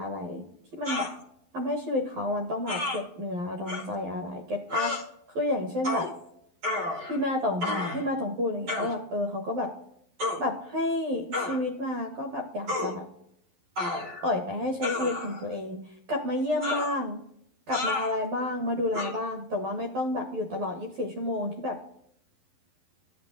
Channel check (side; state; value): left; late; 11 ms